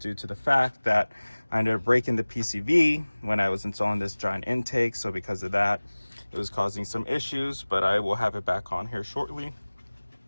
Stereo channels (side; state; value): both; inverted; correlation -1.00